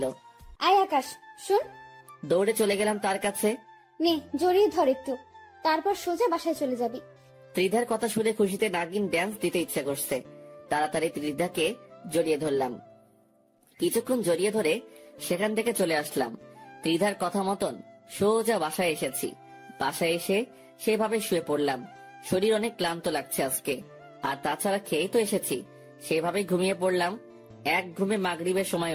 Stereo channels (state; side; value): identical; both; correlation 1.00